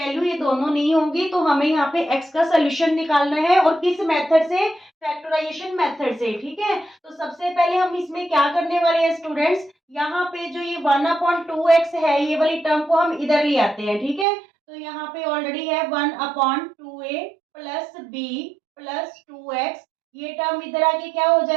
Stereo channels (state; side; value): drops out; left; at 14.2 s